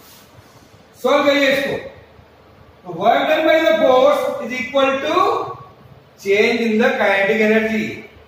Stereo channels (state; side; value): identical; both; correlation 1.00